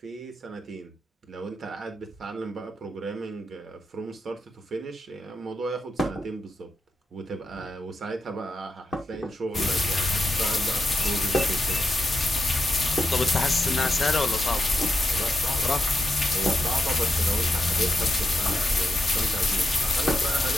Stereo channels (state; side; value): normal; both; correlation 0.86